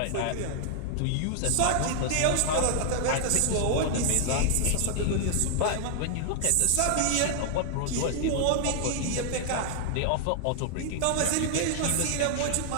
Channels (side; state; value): both; different; correlation 0.00